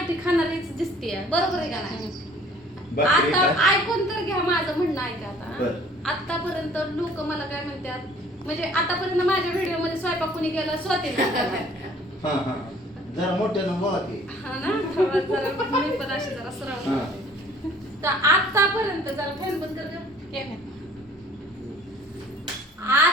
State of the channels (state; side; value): normal; both; correlation 0.54